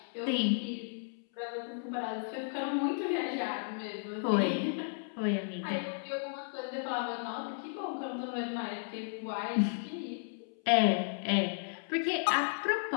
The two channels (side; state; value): right; silent; 55 dB below the other